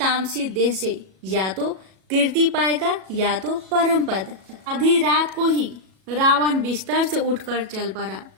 देह से या तो कीर्ति पाएगा या तो परम पद। आधी रात को ही रावण बिस्तर से उठकर चल पड़ा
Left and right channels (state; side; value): late; left; 37 ms